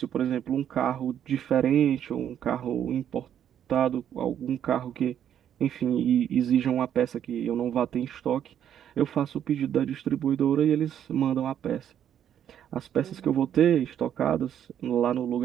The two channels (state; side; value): quieter; left; 9.8 dB